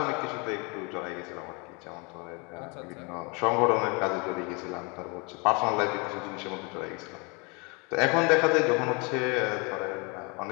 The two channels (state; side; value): quieter; right; 30.9 dB